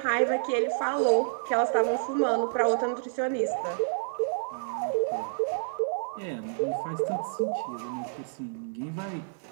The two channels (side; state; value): left; silent; digital silence